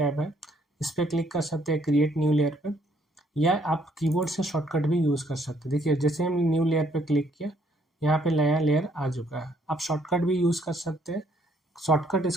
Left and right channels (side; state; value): both; normal; correlation 0.67